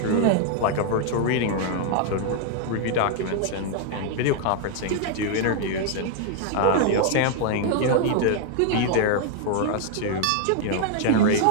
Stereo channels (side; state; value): both; different; correlation 0.00